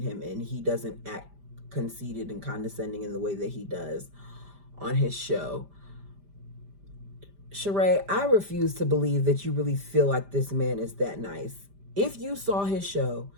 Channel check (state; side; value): late; left; 5.0 ms